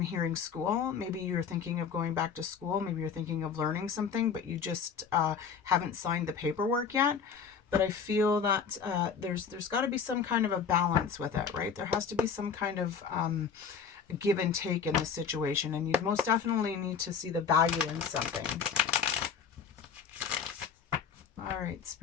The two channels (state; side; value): quieter; right; 6.6 dB